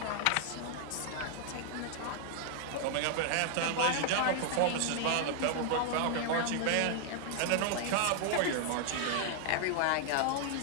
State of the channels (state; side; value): different; both; correlation 0.00